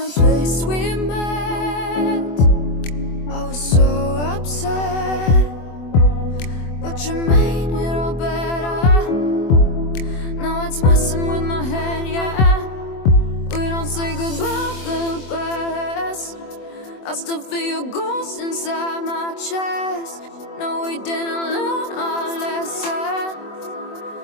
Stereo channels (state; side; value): late; right; 24 ms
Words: place we met. I was so upset, but you made it all better. Now it's messing with my head, yeah. We don't say goodbye the best. I still feel your ghost inside my chest. No, we didn't learn our lesson,